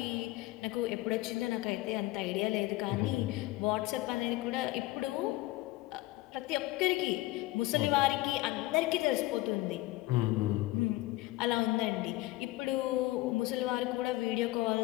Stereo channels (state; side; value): quieter; right; 18.6 dB